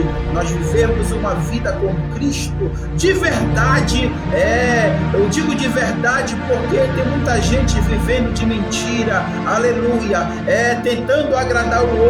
nós vivemos uma vida com Cristo de verdade, eu digo de verdade porque tem muita gente vivendo de mentira, aleluia. aleluia, tentando agradar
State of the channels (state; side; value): identical; both; correlation 1.00